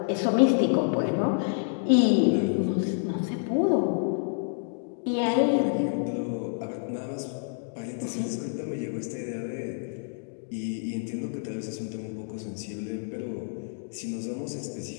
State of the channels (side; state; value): right; silent; digital silence